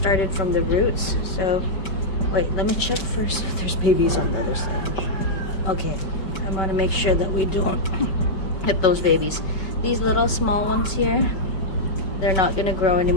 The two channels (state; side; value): late; right; 5.2 ms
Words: from the roots. So wait, let me check first if there's babies on the other side. Okay, I want to make sure that we don't hit those babies. These little small ones here, they're not going to grow